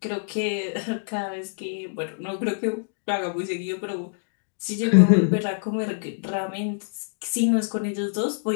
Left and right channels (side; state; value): right; silent; digital silence